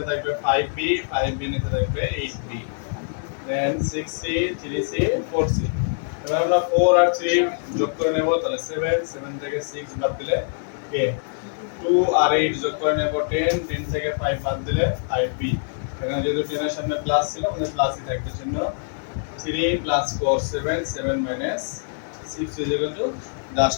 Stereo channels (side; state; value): right; silent; 55 dB below the other